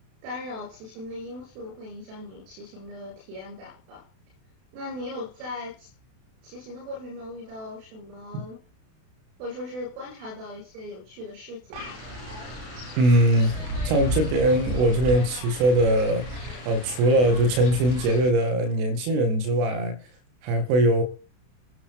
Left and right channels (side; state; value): left; late; 32 ms